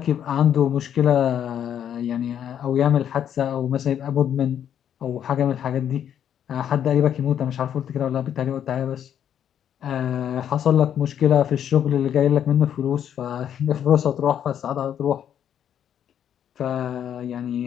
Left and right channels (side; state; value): right; quieter; 9.5 dB